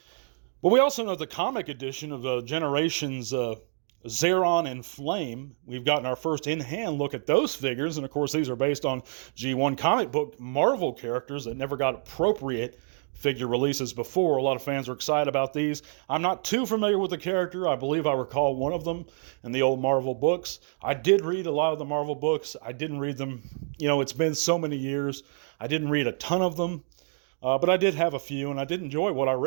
But we also know the comic edition of the Generations Zeron and Flame. We've gotten our first in-hand look at those figures, and of course these are based on G1 comic book Marvel characters that never got appropriate figure releases before. A lot of fans are excited about these. I'm not too familiar with the character. I believe I recall one of them in the old Marvel books. I did read a lot of the Marvel books. I didn't read them, it's been so many years. I didn't read a ton of them, but I did have a few, and I did enjoy what I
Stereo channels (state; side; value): silent; left; digital silence